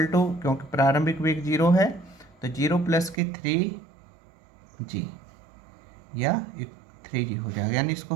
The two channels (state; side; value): drops out; left; at 3.2 s